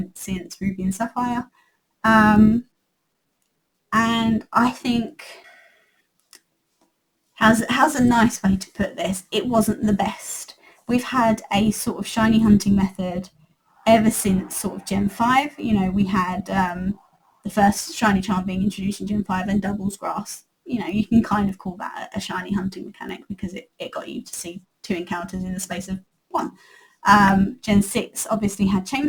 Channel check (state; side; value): identical; both; correlation 1.00